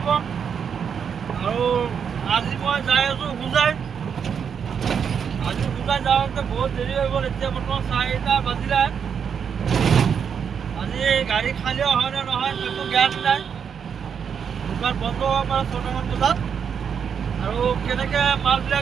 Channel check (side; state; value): left; quieter; 7.2 dB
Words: আৰু আজি মই যাই আছোঁ হোজাই আজি হোজাই যাওঁতে বহুত দেৰি হৈ গ'ল এতিয়া বৰ্তমান 4টা বাজিলে আজি গাড়ী খালীও হয় নে নহয় সেইটো জ্ঞান নাই দোকান বন্ধ হ'ব পাৰে 6টামান বজাত আৰু কেনেকৈ